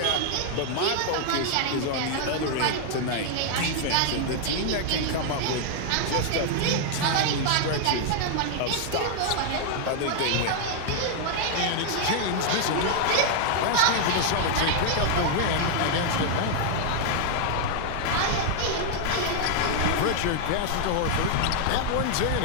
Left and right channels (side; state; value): both; different; correlation 0.00